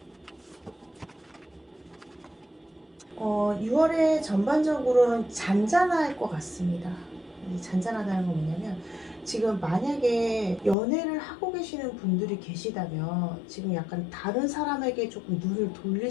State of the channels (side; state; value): right; drops out; at 10.8 s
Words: 6월에 전반적으로는 잔잔할 것 같습니다. 이 잔잔하다는 건 뭐냐면 지금 만약에 연애를 하고 계시는 분들이 계시다면 지금 약간 다른 사람에게 조금 눈을 돌릴